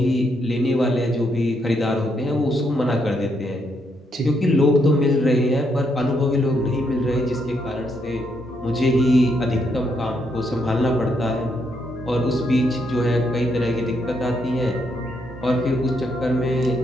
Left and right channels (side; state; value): both; normal; correlation 0.76